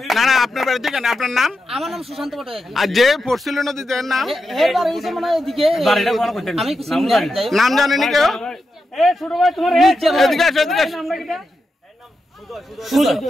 না না আপনার বাড়ি থেকে আপনার নাম আমার নাম সুশান্ত পটে আর যে পড়ছিল নদীতে নাম এর বাড়ি এসে মানে এদিকে বাড়িটা কোন কইতেন আমি কিছু নাম জানেন কেউ এ ছোট ভাই তোমার এদিকে আসো এদিকে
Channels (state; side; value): normal; both; correlation 0.88